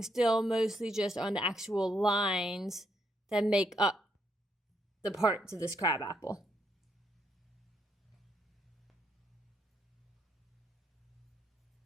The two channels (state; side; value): normal; both; correlation 0.76